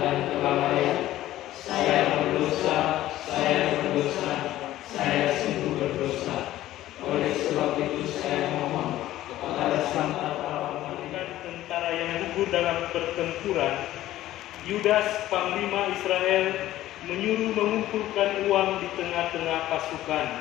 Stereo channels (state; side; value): quieter; right; 14.5 dB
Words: dan kelalaian. Saya berdosa, saya sungguh berdosa. Oleh sebab itu saya mohon kepada Sang Pahlawan tentara yang gugur dalam pertempuran, Yudas, panglima Israel, menyuruh mengumpulkan uang di tengah-tengah pasukan.